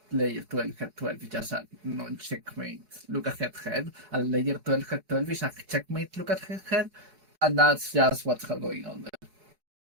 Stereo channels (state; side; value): late; left; 4.8 ms